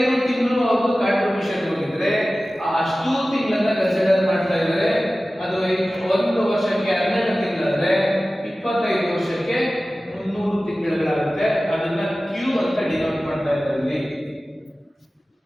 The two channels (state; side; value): normal; both; correlation 0.96